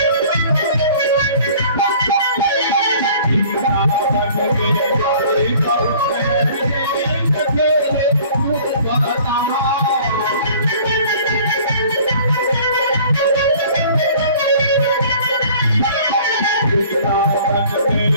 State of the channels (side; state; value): both; inverted; correlation -0.50